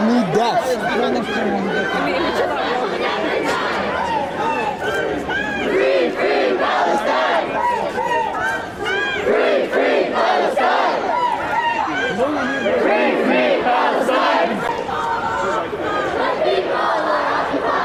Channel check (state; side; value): identical; both; correlation 1.00